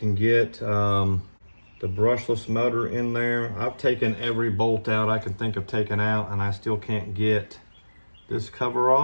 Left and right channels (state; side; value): inverted; both; correlation -1.00